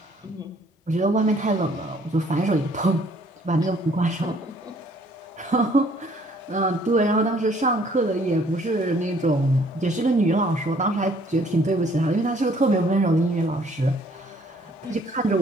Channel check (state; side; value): normal; both; correlation 0.60